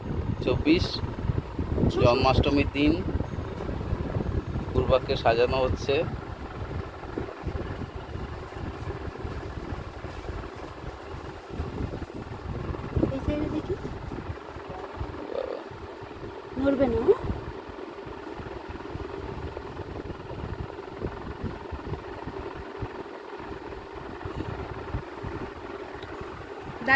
জন্মাষ্টমীর দিন। পূর্বাকে সাজানো হচ্ছে। নড়বে না।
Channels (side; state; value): both; identical; correlation 1.00